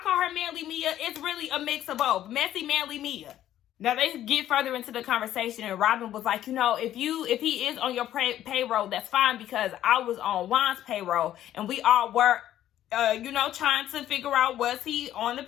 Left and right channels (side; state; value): right; quieter; 12.2 dB